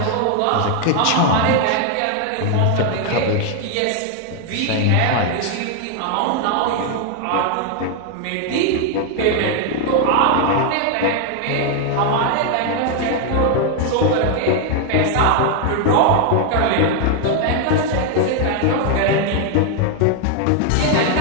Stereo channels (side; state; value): both; different; correlation 0.01